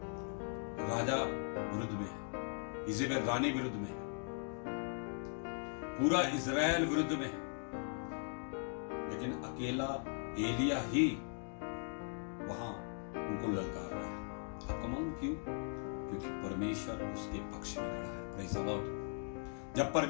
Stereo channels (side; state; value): right; silent; 51 dB below the other